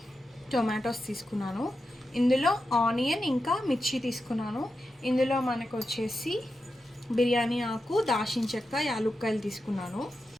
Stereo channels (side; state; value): both; normal; correlation 0.89